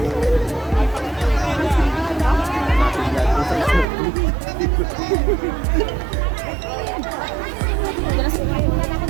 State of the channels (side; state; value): left; drops out; at 3.9 s